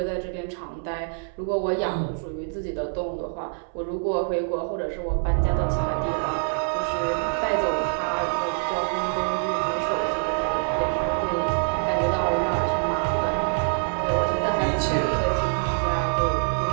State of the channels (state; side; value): silent; left; 62 dB below the other